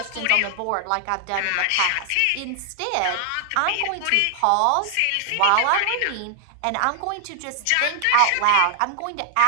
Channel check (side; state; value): both; different; correlation 0.00